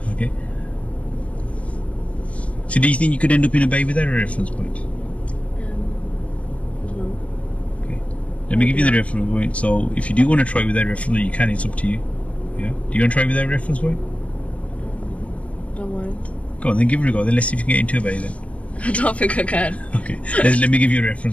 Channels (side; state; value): right; late; 0.064 ms